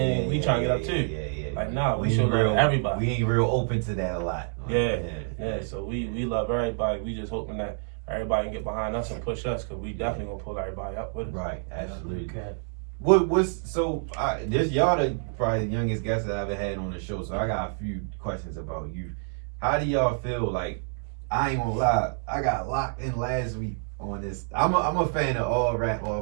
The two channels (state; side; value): silent; left; digital silence